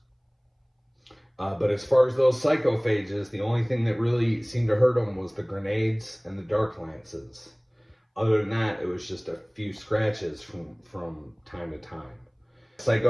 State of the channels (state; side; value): identical; both; correlation 1.00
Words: But as far as those psychophages, the only thing that really seemed to hurt them was the grenades and the Dark Lances. Other than that, it was just a few scratches from time to time.